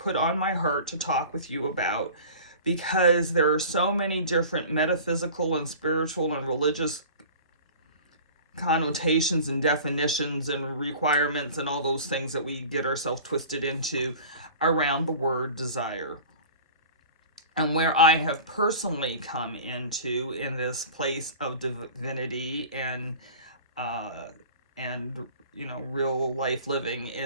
on my heart to talk with you about because there are so many different metaphysical and spiritual and religious connotations and definitions and requirements and all those things that we get ourselves twisted into around the word desire. And where I have personally come into in this place of divinity and real life living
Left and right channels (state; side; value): inverted; both; correlation -0.41